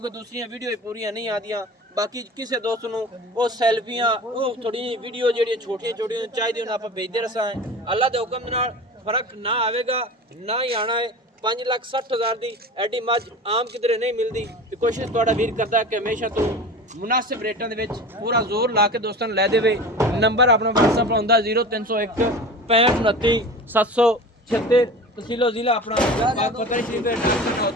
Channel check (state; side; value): normal; both; correlation 0.35